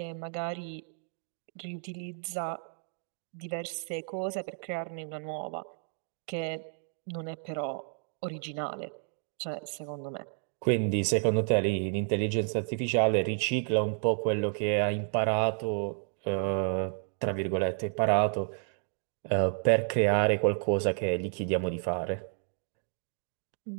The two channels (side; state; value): left; silent; 57 dB below the other